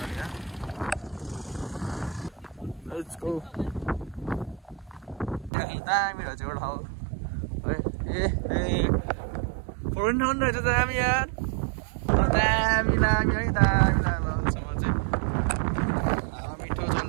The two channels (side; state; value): left; drops out; at 5.5 s